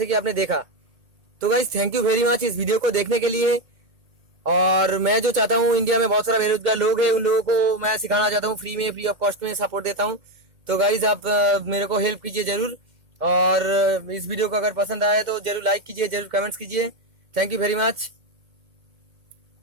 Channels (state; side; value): late; left; 2.2 ms